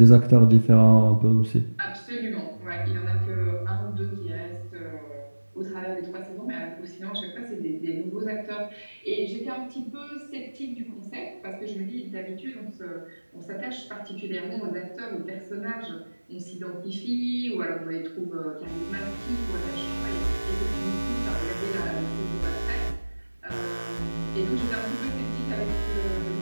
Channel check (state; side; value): inverted; both; correlation -1.00